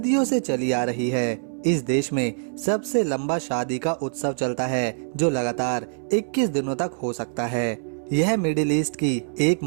से चली आ रही है। इस देश में सबसे लंबा शादी का उत्सव चलता है, जो लगातार 21 दिनों तक हो सकता है। यह मिडिल ईस्ट की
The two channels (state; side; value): silent; left; 62 dB below the other